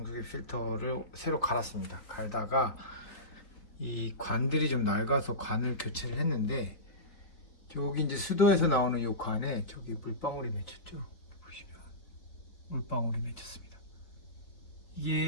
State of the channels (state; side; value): late; right; 4.2 ms